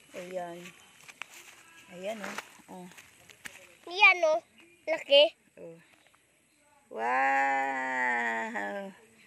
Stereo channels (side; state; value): both; identical; correlation 1.00